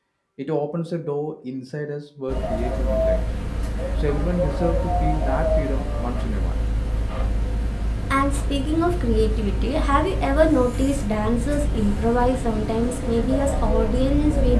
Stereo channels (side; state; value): both; identical; correlation 1.00